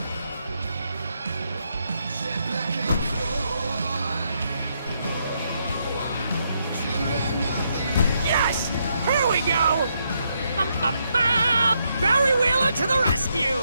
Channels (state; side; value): inverted; both; correlation -0.78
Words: Yes! Here we go! Barry Wheeler to the rescue!